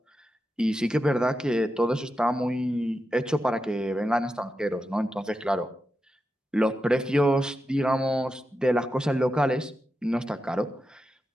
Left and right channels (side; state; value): both; normal; correlation 0.89